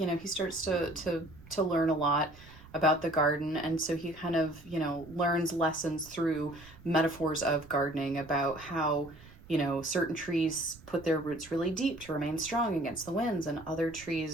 starts to learn a lot about the garden, and so he kind of learns lessons through metaphors of gardening, about how certain trees put their roots really deep to remain strong against the winds, and other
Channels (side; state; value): right; noise; rumble, 21 dB below the sound